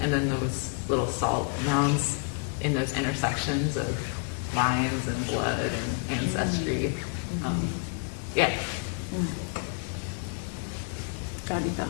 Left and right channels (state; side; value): quieter; right; 36.2 dB